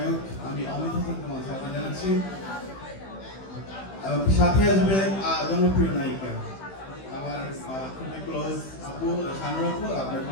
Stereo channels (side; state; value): right; late; 15 ms